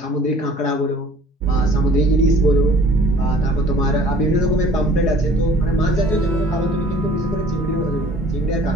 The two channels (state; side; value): normal; both; correlation 0.51